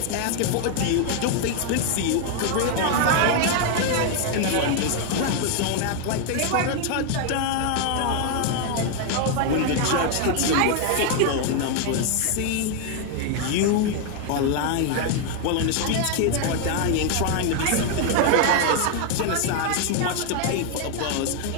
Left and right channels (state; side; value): different; both; correlation 0.01